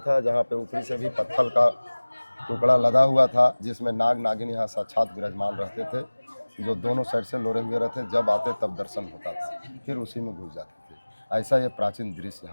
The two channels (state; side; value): inverted; both; correlation -1.00